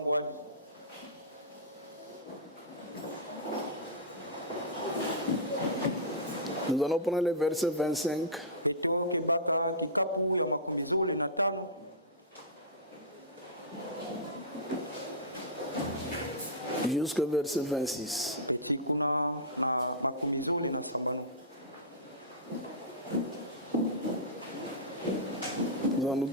Nous allons prendre le verset 25. Jusqu'au verset 26. Nous allons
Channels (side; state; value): both; normal; correlation -0.15